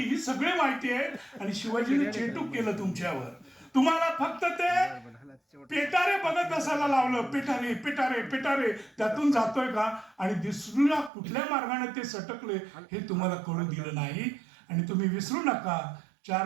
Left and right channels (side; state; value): left; drops out; at 11.1 s